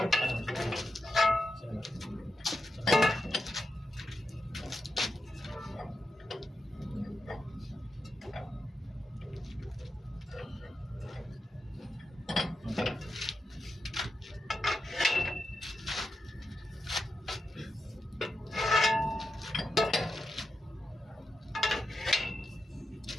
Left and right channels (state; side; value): normal; both; correlation 0.88